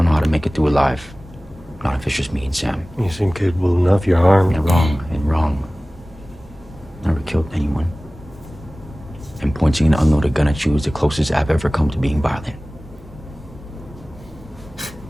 know how to make it through alive. Not if it's just me and Sam. You seem capable enough. You're armed. You're wrong and wrong. Never killed anyone. And pointing an unloaded gun at you is the closest I've ever come to being violent.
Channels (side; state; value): both; normal; correlation 0.98